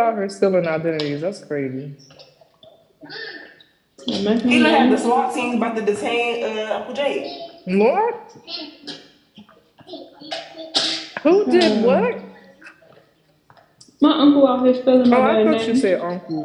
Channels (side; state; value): both; identical; correlation 1.00